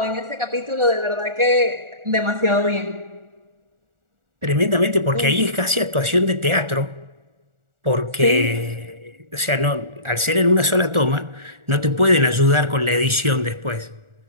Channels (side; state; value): left; late; 1.4 ms